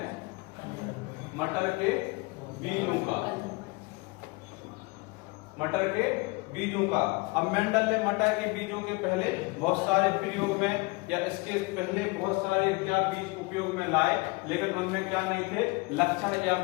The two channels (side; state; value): right; quieter; 26.0 dB